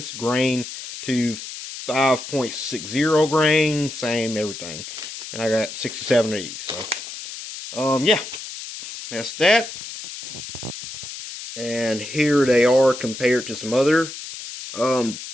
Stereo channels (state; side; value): noise; left; hiss, 10 dB below the sound